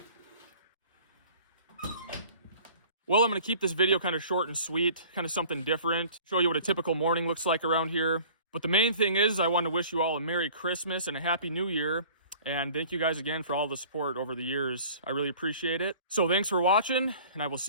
Well, I'm going to keep this video kind of short and sweet, kind of something different, show you what a typical morning looks like around here. But the main thing is I want to wish you all a Merry Christmas and a Happy New Year. And thank you guys again for all the support over the years. I really appreciate it. So thanks for watching, and I will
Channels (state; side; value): inverted; both; correlation -0.48